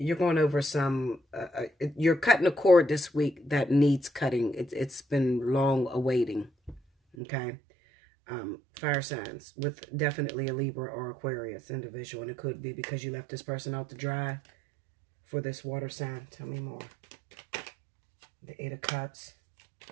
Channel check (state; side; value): drops out; left; at 7.2 s